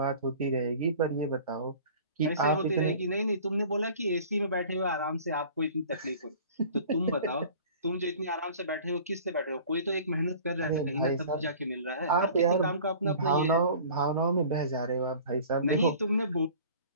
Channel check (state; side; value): inverted; both; correlation -0.45